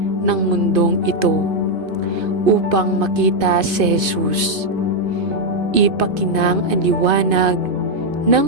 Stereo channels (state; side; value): late; left; 2.5 ms